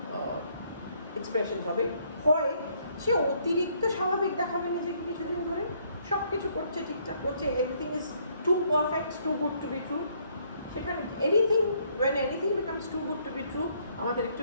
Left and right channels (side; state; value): both; inverted; correlation -0.67